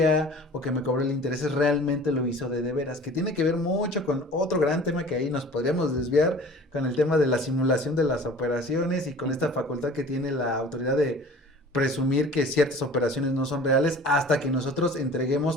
o que me cobró el interés, realmente lo hizo de veras, que tiene que ver mucho con otro gran tema que ahí nos podríamos desviar, con el tema de la simulación de las operaciones y con esta facultad que tiene la autoridad de presumir que ciertas operaciones no son reales hasta que nosotros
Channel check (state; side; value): normal; both; correlation 0.44